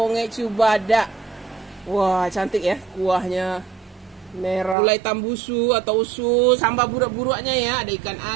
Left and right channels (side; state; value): left; drops out; at 4.8 s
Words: cubada. Wah, cantik ya kuahnya. Merah. Gulai tambusu atau usus. Sambal buruk-buruknya ya. Ada ikan